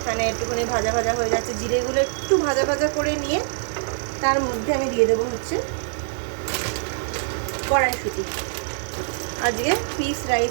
একটুখানি ভাজা ভাজা হয়ে যাচ্ছে, জিরেগুলো একটু ভাজা ভাজা করে নিয়ে তার মধ্যে আমি দিয়ে দেবো হচ্ছে কড়াইশুঁটি। আজকে পিস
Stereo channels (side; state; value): left; silent; digital silence